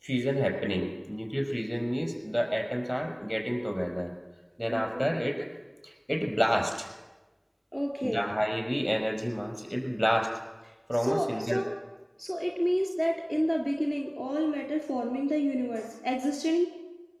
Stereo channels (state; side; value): identical; both; correlation 1.00